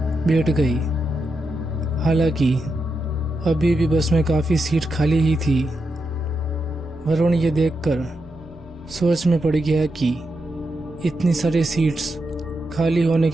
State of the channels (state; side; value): normal; both; correlation 0.85